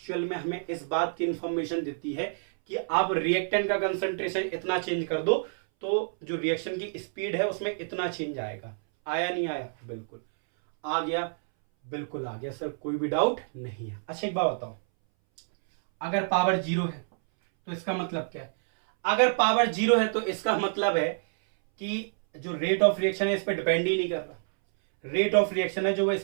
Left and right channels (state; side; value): silent; left; 59 dB below the other